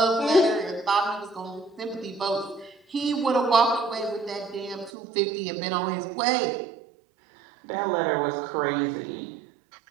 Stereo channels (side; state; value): left; drops out; at 4.9 s